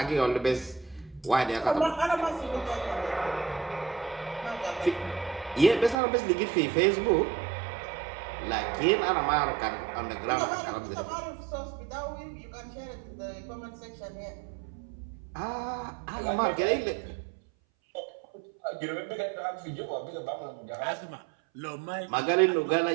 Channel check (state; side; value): drops out; left; at 6.0 s